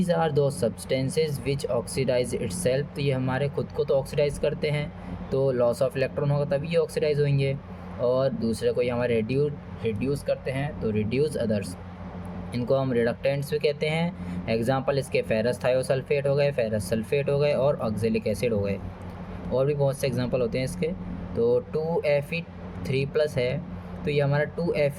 आर दो सब्सटेंसेज विच ऑक्सीडाइज इटसेल्फ। तो ये हमारे खुद को तो ऑक्सीडाइज करते हैं, तो लॉस ऑफ इलेक्ट्रॉन होगा तभी ये ऑक्सीडाइज होंगे, और दूसरे को ये हमारे रिड्यूस करते हैं, तो रिड्यूस अदर्स। इनको हम रिडक्टेंट्स भी कहते हैं। एग्जांपल इसके फेरस थायोसल्फेट हो गए, फेरस सल्फेट हो गए और ऑक्जेलिक एसिड हो गए। और भी बहुत से एग्जांपल होते हैं इसके। तो 2Fe3+ है, तो ये हमारा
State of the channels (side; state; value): both; identical; correlation 1.00